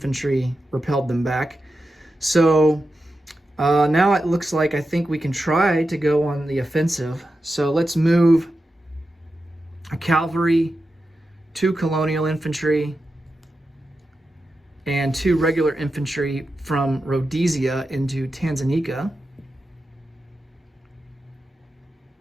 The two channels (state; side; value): normal; both; correlation 0.90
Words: repelled them back. So now it looks like I think we can try to go on the offensive. So let's move a cavalry, 2 colonial infantry, and 2 regular infantry from Rhodesia into Tanganyika.